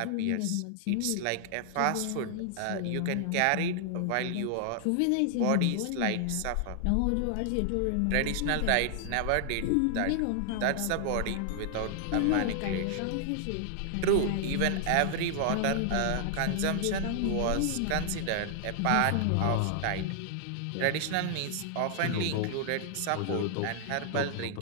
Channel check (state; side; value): different; both; correlation -0.01